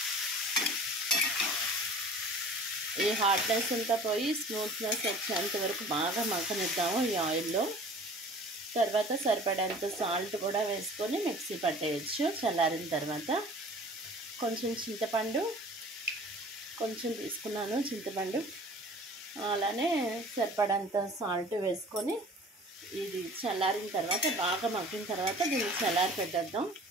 ఈ హార్డ్నెస్ అంతా పోయి స్మూత్నెస్ వచ్చేంత వరకు బాగా మగ్గనిద్దాము ఈ ఆయిల్లో. తర్వాత సరిపడేంత సాల్ట్ కూడా వేసుకొని మిక్సీ పట్టేయచ్చు. చల్లారిన తర్వాత కొంచెం చింతపండు కొంచెం తీసుకున్నాను. చింతపండు అలానే సరిపడంత సాల్ట్ వేసుకొని ఇది చల్లారిన తర్వాత బాగా మగ్గిన తర్వాత దీన్ని చల్లారి పెట్టేద్దాం.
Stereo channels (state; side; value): normal; both; correlation 0.45